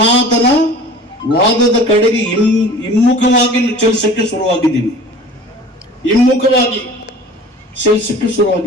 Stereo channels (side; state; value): both; normal; correlation 0.43